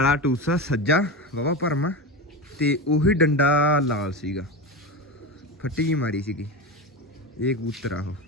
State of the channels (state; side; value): normal; both; correlation 0.22